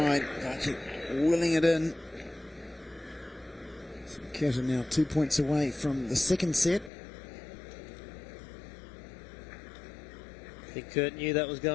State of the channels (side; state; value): right; drops out; at 6.9 s